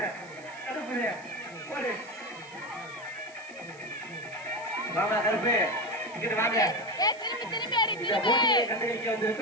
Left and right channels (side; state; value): right; noise; hiss, 23 dB below the sound